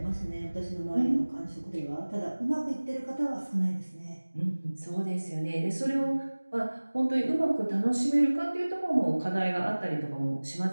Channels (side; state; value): both; inverted; correlation -1.00